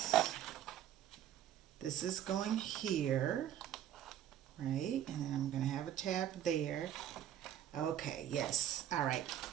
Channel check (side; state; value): left; quieter; 11.0 dB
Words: this is going here, right? And then I'm going to have a tab there. Okay, yes. All right.